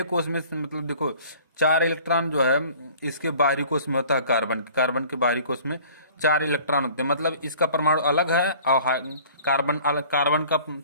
कोष में मतलब देखो 4 इलेक्ट्रॉन जो है इसके बाहरी कोष में होता है, कार्बन के बाहरी कोष में 4 इलेक्ट्रॉन होते हैं। मतलब इसका परमाणु अलग है और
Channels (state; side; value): inverted; both; correlation -0.49